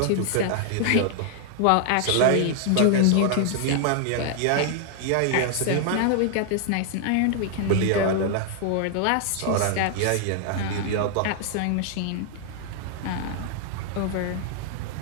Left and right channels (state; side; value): different; both; correlation 0.00